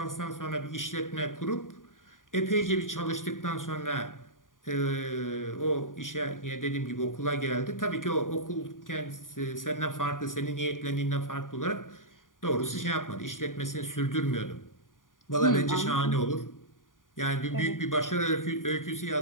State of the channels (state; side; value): late; right; 0.89 ms